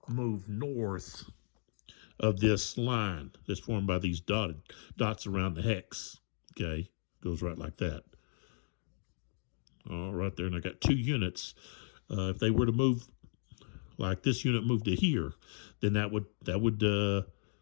move north of this line that's formed by these dots around the hex, okay? Goes right like that. All right there, and I got 2 units. If they were to move, like this unit moved to here, then that would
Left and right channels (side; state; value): right; silent; digital silence